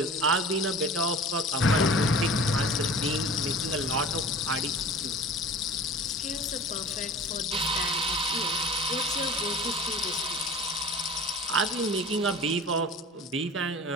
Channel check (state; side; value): normal; both; correlation 0.40